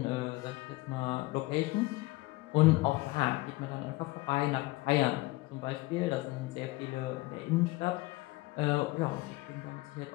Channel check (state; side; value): quieter; right; 21.4 dB